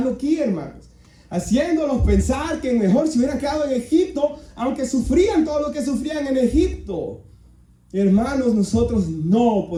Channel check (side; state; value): both; identical; correlation 1.00